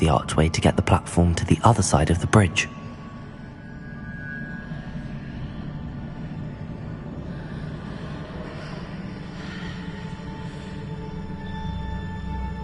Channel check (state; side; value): identical; both; correlation 1.00